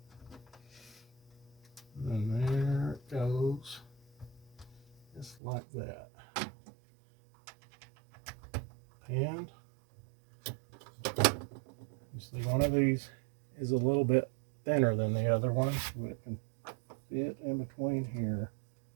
And there it goes, just like that. And you see one of these is a little bit thinner than the other one, so it can fit in between here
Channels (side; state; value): left; drops out; at 5.4 s